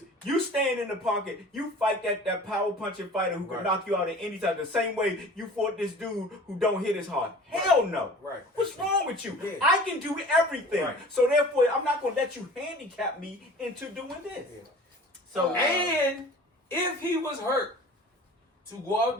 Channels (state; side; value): normal; both; correlation 0.43